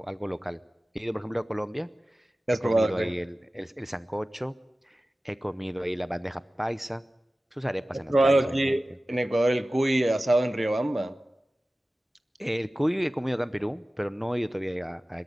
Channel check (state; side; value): normal; both; correlation 0.96